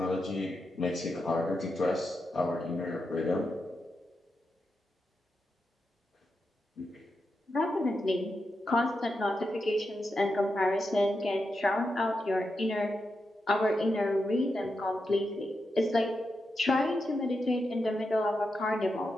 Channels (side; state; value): both; normal; correlation 0.87